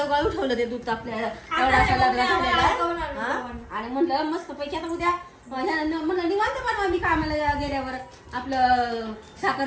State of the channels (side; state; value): both; identical; correlation 1.00